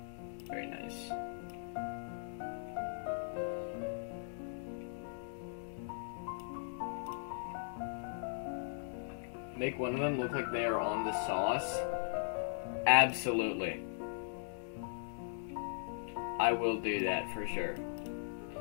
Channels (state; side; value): silent; right; digital silence